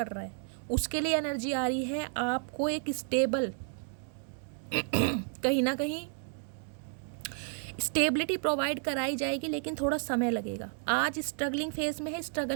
रहा है, उसके लिए एनर्जी आ रही है। आपको एक स्टेबल कहीं ना कहीं स्टेबिलिटी प्रोवाइड कराई जाएगी, लेकिन थोड़ा समय लगेगा। आज स्ट्रगलिंग फेज में है,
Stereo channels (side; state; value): left; silent; 56 dB below the other